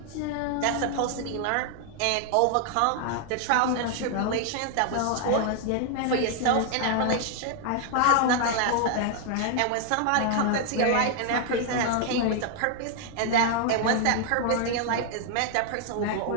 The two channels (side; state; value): both; different; correlation 0.00